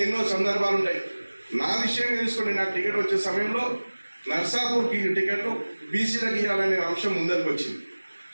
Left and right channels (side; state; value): both; inverted; correlation -1.00